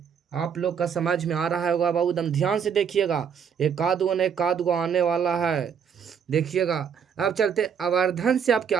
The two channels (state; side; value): quieter; left; 7.3 dB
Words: आप लोग का समझ में आ रहा होगा बाबू। एकदम ध्यान से देखिएगा, एक आध गो आने वाला है। देखिएगा, अब चलते। आवर्धन से आप